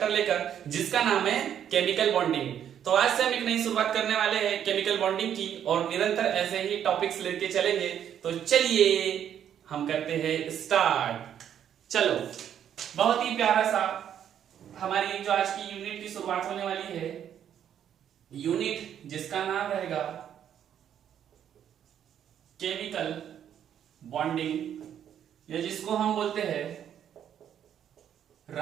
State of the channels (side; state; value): left; quieter; 9.5 dB